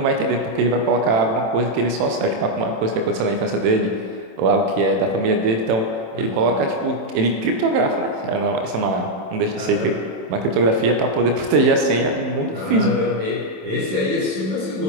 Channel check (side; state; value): left; late; 27 ms